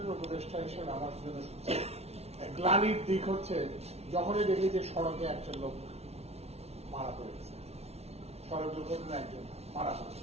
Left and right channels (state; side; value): late; left; 0.31 ms